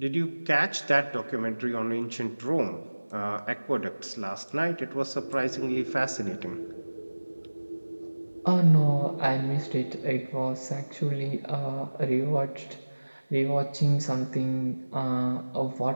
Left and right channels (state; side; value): inverted; both; correlation -1.00